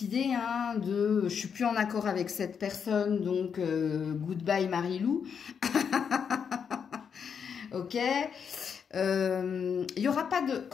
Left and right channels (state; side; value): quieter; right; 6.9 dB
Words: idée hein, de « je suis plus en accord avec cette personne, donc goodbye Marilou ». Ok. Il n'y aura pas de...